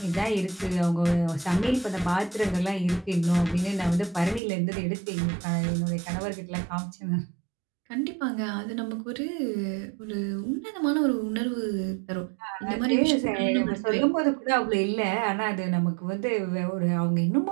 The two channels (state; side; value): drops out; left; at 4.4 s